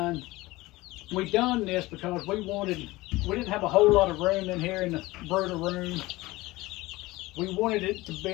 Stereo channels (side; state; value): right; quieter; 19.8 dB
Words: we done this because we didn't have a whole lot of room in here in the brooder room. We wanted it to